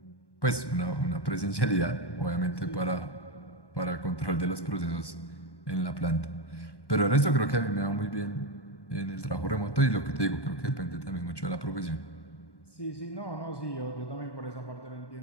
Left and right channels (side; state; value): right; late; 1.1 ms